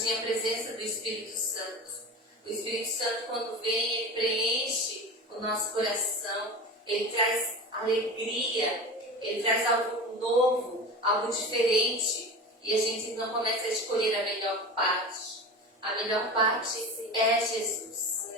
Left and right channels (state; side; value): normal; both; correlation 0.31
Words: a presença do Espírito Santo. O Espírito Santo, quando vem, ele preenche o nosso coração, ele traz alegria, ele traz algo novo, algo diferente, e a gente não começa a escolher a melhor parte. A melhor parte é Jesus.